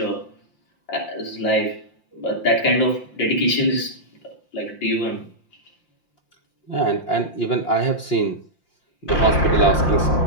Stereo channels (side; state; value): right; late; 5.7 ms